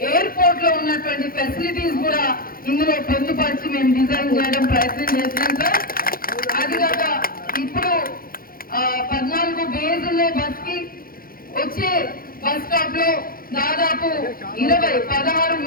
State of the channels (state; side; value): late; right; 0.42 ms